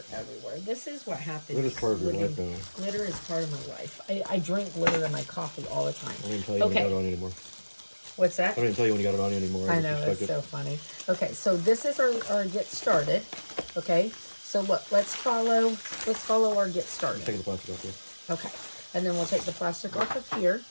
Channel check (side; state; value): both; inverted; correlation -1.00